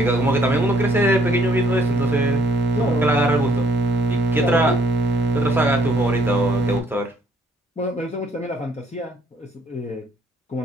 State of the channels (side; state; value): both; normal; correlation 0.65